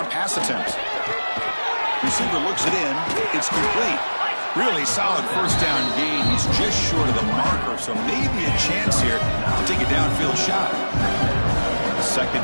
pass attempt. Receiver looks it in. It's complete. Really solid first down gain. He's just short of the marker, so maybe a chance here to take a downfield shot.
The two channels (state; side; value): inverted; both; correlation -1.00